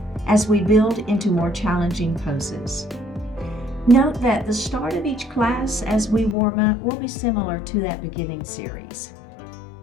as we build into more challenging poses. Note that the start of each class as we warm up will be similar to that beginning series.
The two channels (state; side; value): drops out; right; at 6.4 s